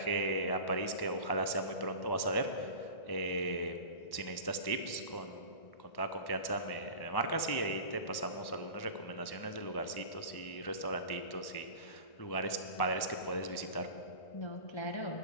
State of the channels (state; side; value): late; right; 1.1 ms